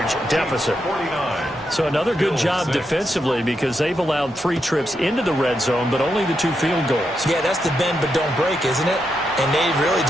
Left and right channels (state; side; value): normal; both; correlation 0.83